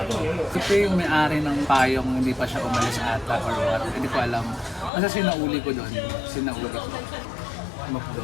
Ito yung may-ari ng payong, hindi pa siya umalis ata or what. Hindi ko alam. Kasi sinauli ko doon. Sinauli ko.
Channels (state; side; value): drops out; right; at 4.9 s